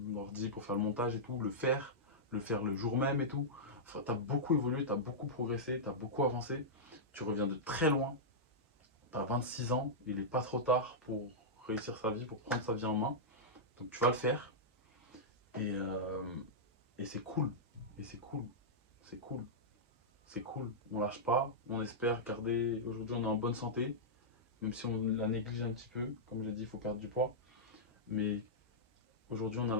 ordi pour faire le montage et tout, le faire le jour même et tout. Enfin, tu as beaucoup évolué, tu as beaucoup progressé, tu as beaucoup avancé. Tu reviens de très loin. Tu as 26 ans, il n'est pas trop tard pour réussir sa vie, pour prendre sa vie en main. Donc tu vas le faire. Et, euh, et c'est cool. Et c'est cool. C'est cool. C'est cool. On lâche pas. On espère garder. Aujourd'hui, on est en bonne santé. Même si on la néglige un petit peu. Comme j'ai dit, il faut perdre du poids. Mais aujourd'hui, on a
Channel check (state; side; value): normal; both; correlation -0.11